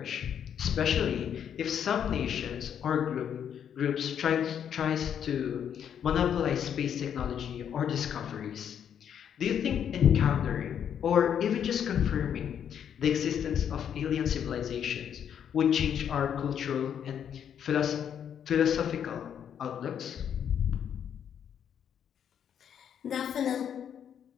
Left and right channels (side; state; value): right; quieter; 8.7 dB